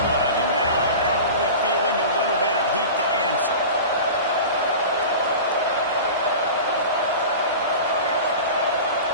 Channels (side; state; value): both; inverted; correlation -0.34